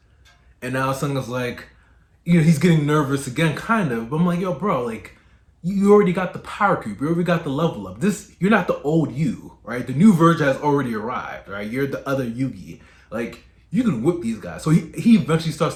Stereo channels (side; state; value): both; identical; correlation 1.00